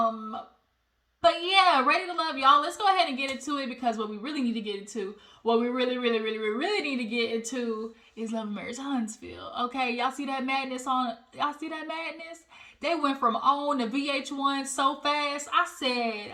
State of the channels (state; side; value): identical; both; correlation 1.00